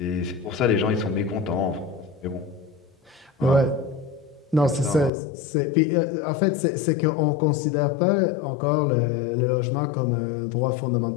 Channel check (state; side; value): drops out; right; at 5.1 s